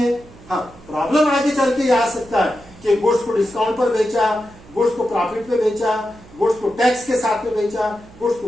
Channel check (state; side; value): noise; right; hum, 22 dB below the sound